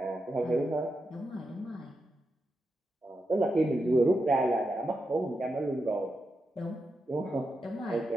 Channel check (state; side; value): normal; both; correlation 0.86